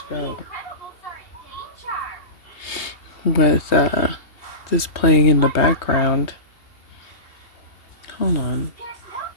go. With this playing in the background. Hold on.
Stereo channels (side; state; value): right; late; 2.8 ms